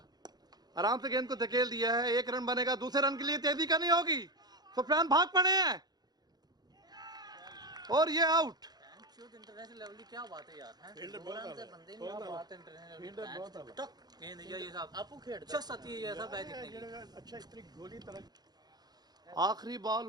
आराम से गेंद को धकेल दिया है, 1 रन बनेगा। दूसरे रन के लिए तेजी करनी होगी, सुफियान भाग पड़े हैं और ये आउट। इंटरनेशनल लेवल की क्या बात है यार, हैं? फील्डर बहुत बंदे नहीं, क्या बात है इंटरनेशनल फील्डर बहुत है। टक गेंद ये सब आपको खेलता सती है, ये सब है जितने की। अच्छा इतनी गोली तरह। आखिरी बॉल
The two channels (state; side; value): late; left; 0.19 ms